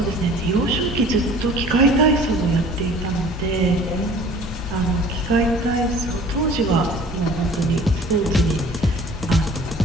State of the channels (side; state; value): both; normal; correlation 0.48